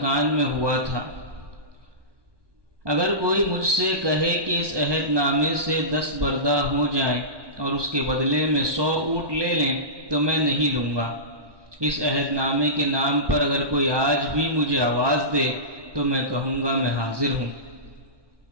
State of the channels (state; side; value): late; left; 1.2 ms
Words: میں ہوا تھا۔ اگر کوئی مجھ سے کہے کہ اس عہد نامے سے 10 بردہ ہو جائیں اور اس کے بدلے میں 100 اونٹ لے لیں تو میں نہیں لوں گا۔ اس عہد نامے کے نام پر اگر کوئی آج بھی مجھے آواز دے تو میں کہوں گا میں حاضر ہوں۔